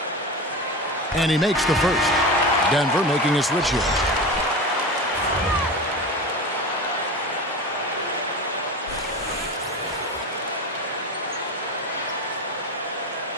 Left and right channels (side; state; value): both; normal; correlation 0.27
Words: And he makes the first. Denver making a switch here.